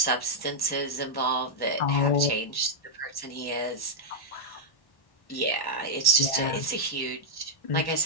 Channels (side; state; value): right; late; 1.1 ms